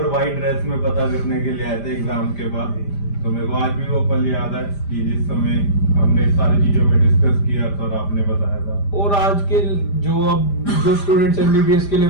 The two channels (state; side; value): late; right; 5.0 ms